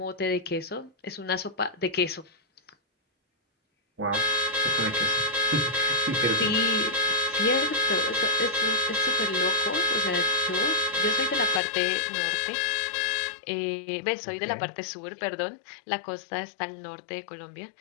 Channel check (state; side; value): drops out; right; at 11.6 s